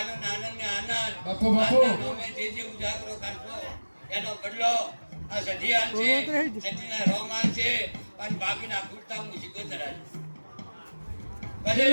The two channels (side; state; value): both; inverted; correlation -1.00